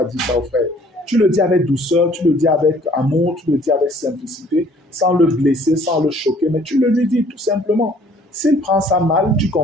dire ça aux frères. Tu le dis avec douceur, tu le dis avec amour, tu le dis avec simplicité, sans le blesser, sans le choquer, mais tu le lui dis tout simplement. S'il prend ça mal, tu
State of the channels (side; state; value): both; normal; correlation 0.57